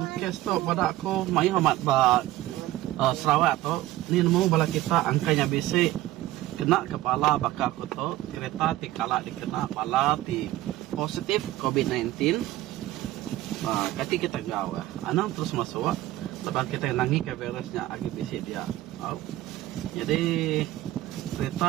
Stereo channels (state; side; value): quieter; left; 15.8 dB